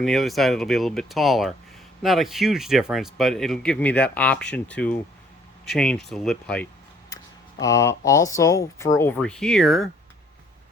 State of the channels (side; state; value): both; normal; correlation 0.61